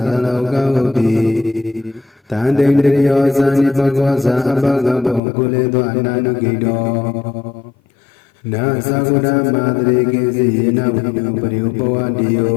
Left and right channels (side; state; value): right; drops out; at 5.2 s